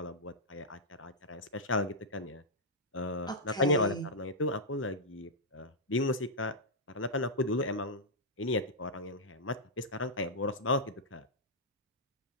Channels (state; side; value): normal; both; correlation -0.08